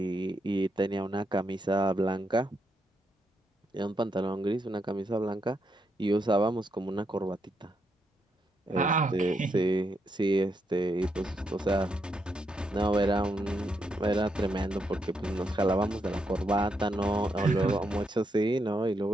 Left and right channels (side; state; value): both; normal; correlation 0.80